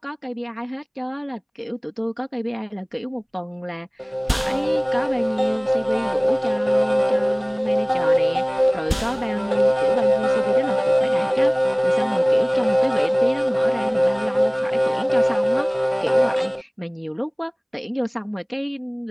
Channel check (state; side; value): identical; both; correlation 1.00